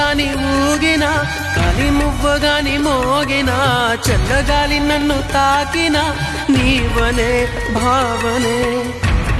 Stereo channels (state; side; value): identical; both; correlation 1.00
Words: ఊగినా గాలి మువ్వగాని మోగినా చల్లగాలి నన్ను తాకినా నీవనే భావనే